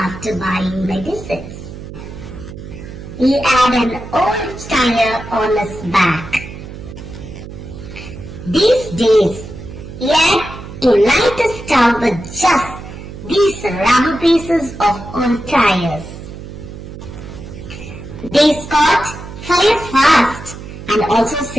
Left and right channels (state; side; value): noise; right; hum, 12 dB below the sound